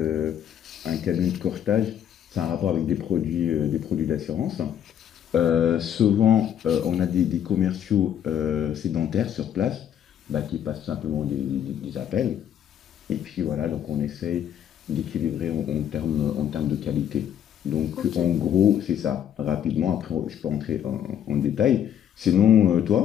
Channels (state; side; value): quieter; right; 9.6 dB